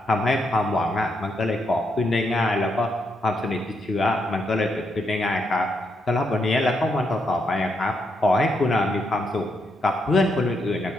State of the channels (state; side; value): normal; both; correlation 0.80